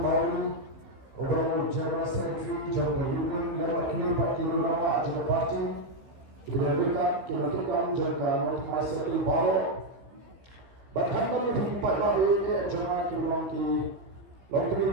Ublong General Secretary Jonka Ublong Lama Kini Pak Kilo Lama Ajak Party Kinerika Jonka Mat Masri Balo Berhambat di pada ini Jonka Ublong Ki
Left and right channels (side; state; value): left; late; 15 ms